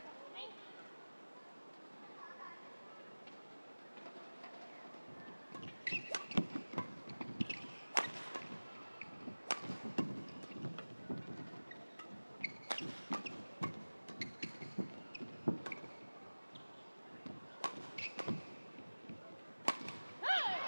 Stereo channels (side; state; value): both; inverted; correlation -1.00